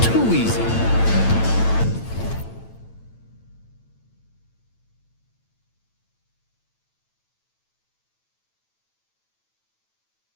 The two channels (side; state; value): right; late; 9.0 ms